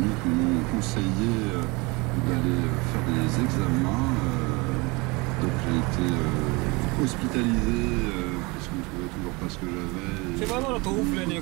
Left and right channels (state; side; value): quieter; left; 26.1 dB